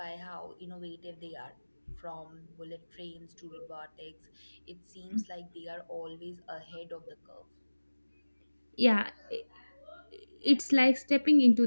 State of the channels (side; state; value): both; inverted; correlation -1.00